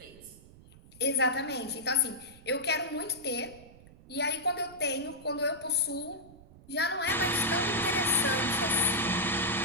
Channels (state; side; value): noise; right; rumble, 22 dB below the sound